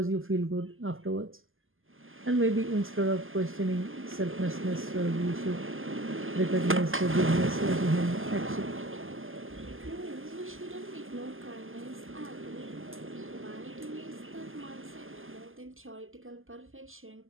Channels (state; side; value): late; left; 0.59 ms